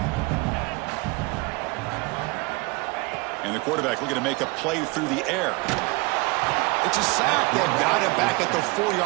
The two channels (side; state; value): left; quieter; 26.0 dB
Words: And the quarterback looking to make a play through the air. It's a sack. They've got him back at the